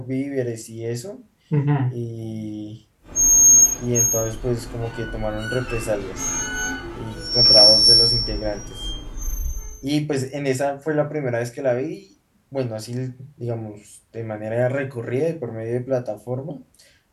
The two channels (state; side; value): identical; both; correlation 1.00